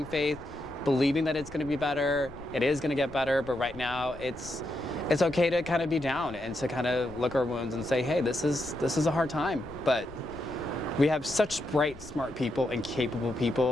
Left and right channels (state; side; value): noise; left; rumble, 18 dB below the sound